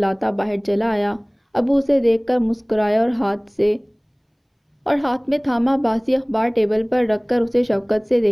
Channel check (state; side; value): identical; both; correlation 1.00